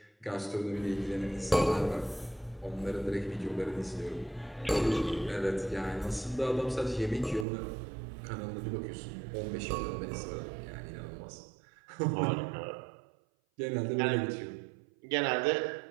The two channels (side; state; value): left; drops out; at 7.5 s